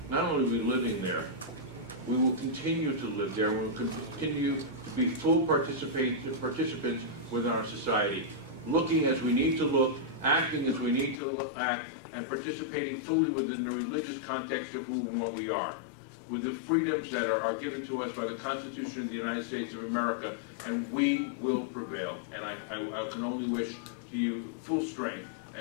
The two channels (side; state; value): right; drops out; at 11.2 s